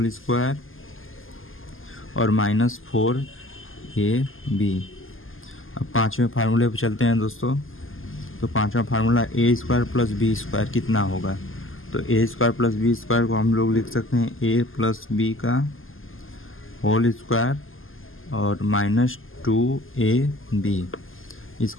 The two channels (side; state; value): right; late; 0.59 ms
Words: स्क्वायर और -4ab। अब पांचवें फार्मूले पे चलते हैं दोस्तों। तो पांचवा फार्मूला a² + b² कितना होगा। तो a² + b² को हम लोग लिख सकते हैं a + b का होल स्क्वायर और -2ab।